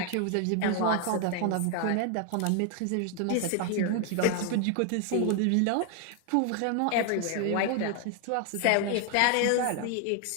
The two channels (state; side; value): different; both; correlation 0.00